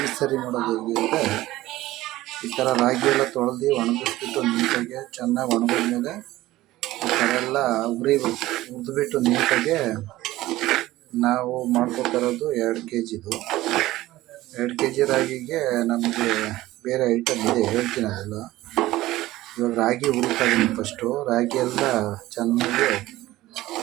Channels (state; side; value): quieter; left; 16.7 dB